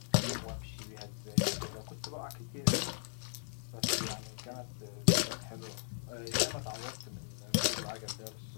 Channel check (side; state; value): right; silent; digital silence